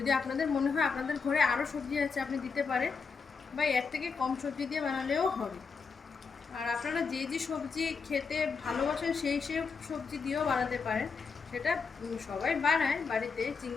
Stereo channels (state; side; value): quieter; right; 5.3 dB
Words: আপনাদের মনে হয় আপনাদের ঘরে আরও সবজি আছে আপনি দিতে পারেন, বা এর থেকে কম সবজি দিয়ে বানালেও হবে। আর আপনারা যে যে সবজি খেতে ভালোবাসেন সেই সবজি দিয়েও বানাতে পারেন, সেটা সবাই বানায় বাড়িতে।